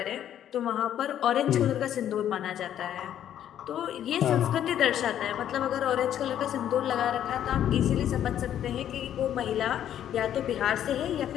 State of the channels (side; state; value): right; quieter; 10.6 dB